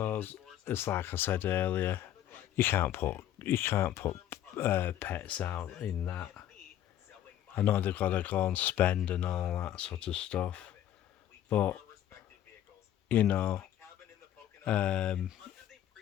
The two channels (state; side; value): quieter; right; 11.6 dB